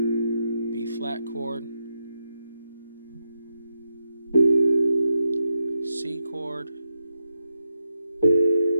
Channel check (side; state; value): both; inverted; correlation -0.85